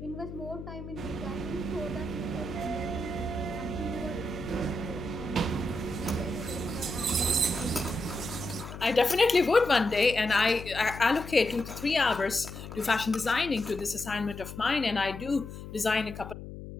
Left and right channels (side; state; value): left; noise; hum, 11 dB below the sound